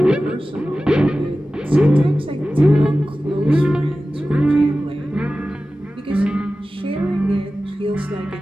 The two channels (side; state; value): both; normal; correlation 0.95